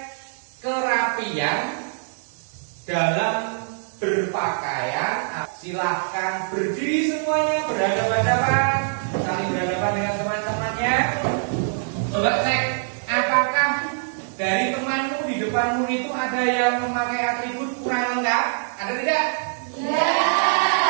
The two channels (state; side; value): silent; left; 63 dB below the other